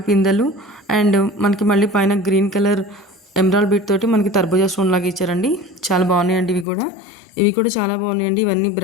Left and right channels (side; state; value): right; drops out; at 6.7 s